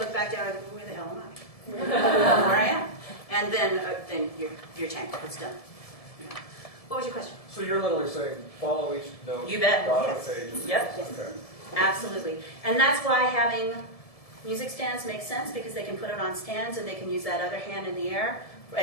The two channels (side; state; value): right; late; 1.7 ms